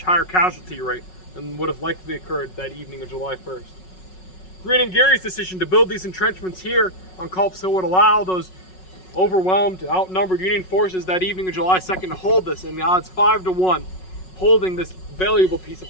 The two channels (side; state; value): right; late; 5.4 ms